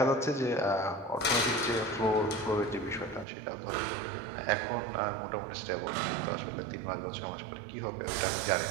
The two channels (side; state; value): left; drops out; at 3.2 s